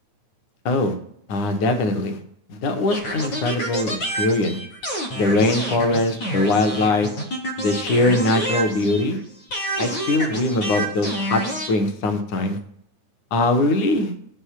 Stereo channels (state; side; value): late; right; 9.3 ms